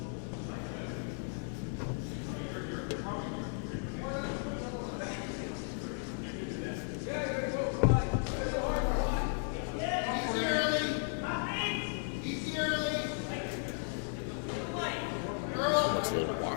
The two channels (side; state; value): right; silent; 54 dB below the other